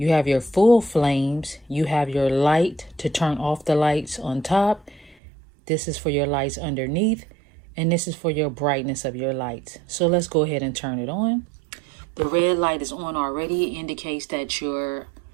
have your full flames. You have your light to turn off the lights on top. This is for your lights underneath. And this is for your brightness of your lights. So let's go ahead and turn it on. The red light is on already. It indicates that your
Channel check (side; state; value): left; drops out; at 5.2 s